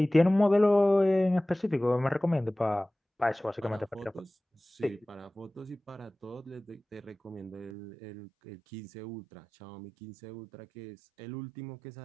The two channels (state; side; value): drops out; left; at 7.8 s